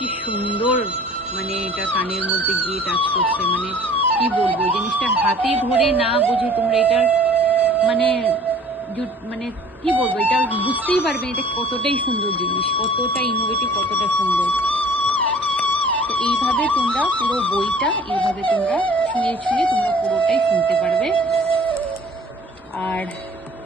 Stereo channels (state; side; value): normal; both; correlation 0.50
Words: সুন্দর, মানে এটা কানের মধ্যে গিয়ে টাচ করছে, মানে কি বলবো, জিনিসটা হাতে ধরে না বুঝে তোমরা এটা মানে মানে কি বলবো, এটা বুঝতেই পারবে এটা কতটাই সুন্দর জিনিস, কতটা ইনোভেটিভ, কতটা সুন্দর। তো এইভাবে তোমরা পুরো বইটা এইভাবে তোমরা ছুঁয়ে ছুঁয়ে তোমরা পুরোটাই শুনতে পারবে। আর